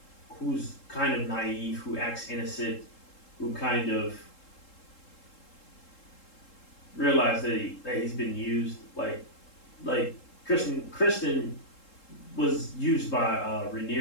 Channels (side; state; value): right; late; 3.7 ms